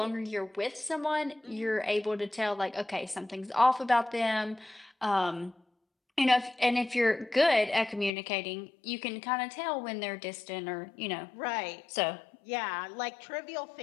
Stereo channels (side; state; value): right; drops out; at 8.1 s